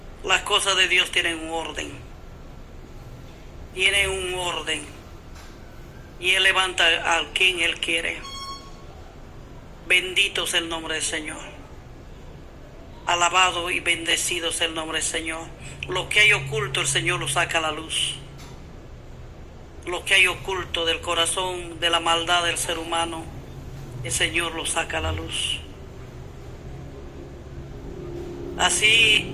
Las cosas de Dios tienen un orden. Y Él levanta a quien Él quiere. Bendito es el nombre del Señor. Alabado y bendecido es el nombre del Señor. Lo que hay oculto, el Señor lo saca a la luz. Lo que hay oculto del corazón, de la maldad del ser humano, el Señor lo saca a la luz. Así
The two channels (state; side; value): identical; both; correlation 1.00